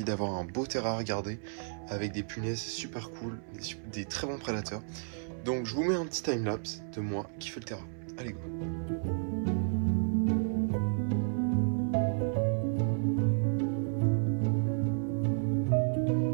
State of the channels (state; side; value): silent; left; 56 dB below the other